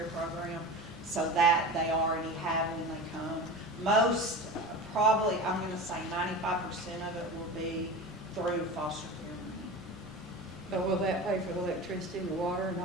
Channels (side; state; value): both; normal; correlation 0.30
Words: program, so that they already have when they come. Most, probably, I'm gonna say 95% of it will be through foster care money. but will that pay for the electricity and the water and